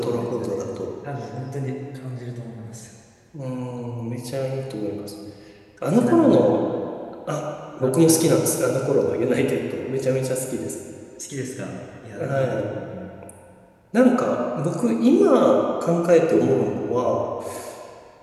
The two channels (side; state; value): both; identical; correlation 1.00